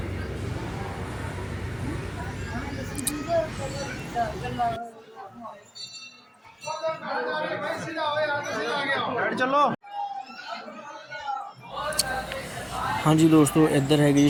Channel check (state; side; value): identical; both; correlation 1.00